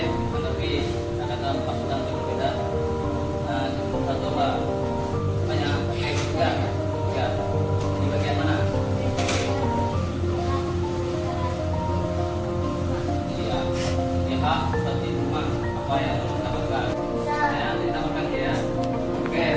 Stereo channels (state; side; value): identical; both; correlation 1.00